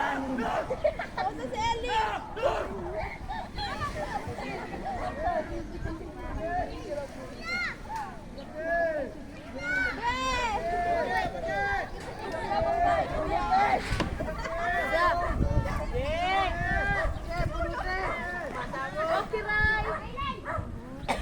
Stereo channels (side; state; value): both; identical; correlation 1.00